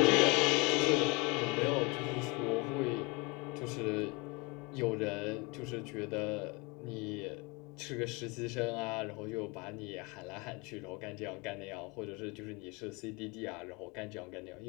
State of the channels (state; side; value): quieter; right; 27.6 dB